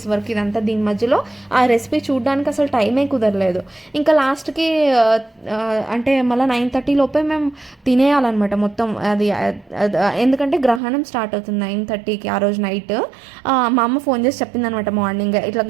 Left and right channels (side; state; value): left; drops out; at 10.8 s